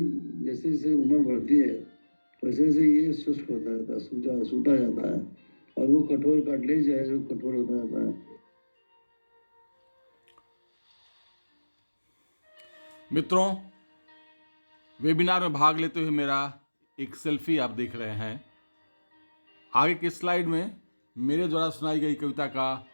जैसे जैसे उम्र बढ़ती है वैसे वैसे ये शुष्क होता रहता है, सूता जाता है, और वो कठोर कार्टिलेज है जो कठोर होता जाता है। मित्रों, वेबिनार में भाग लेते हुए मेरा एक सेल्फी आप देख रहे हैं। आगे के स्लाइड में मेरे द्वारा सुनाई गई कविता का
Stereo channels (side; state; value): both; inverted; correlation -1.00